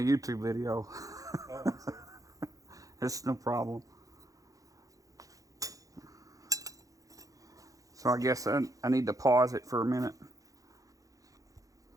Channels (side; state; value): left; late; 0.17 ms